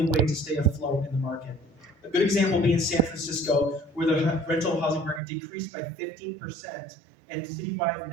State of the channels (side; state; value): left; drops out; at 5.2 s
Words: way to stay afloat in the market. A good example being San Francisco, where the rental housing market decreased by 15% and citywide